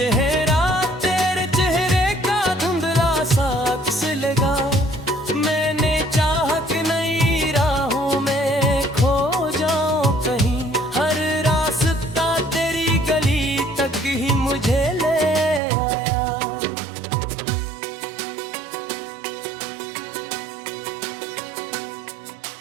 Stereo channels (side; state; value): left; drops out; at 15.6 s